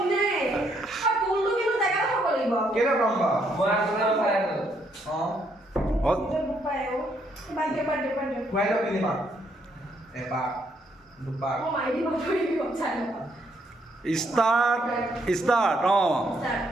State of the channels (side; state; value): both; normal; correlation 0.72